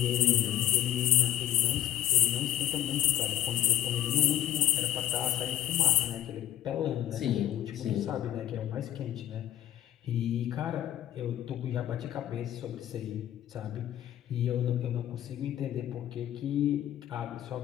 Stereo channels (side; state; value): right; quieter; 11.9 dB